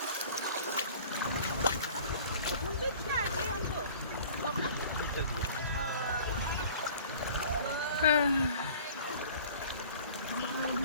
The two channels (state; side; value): inverted; both; correlation -0.47